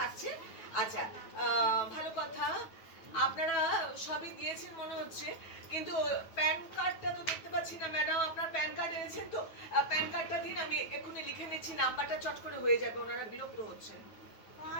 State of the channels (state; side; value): late; right; 9.3 ms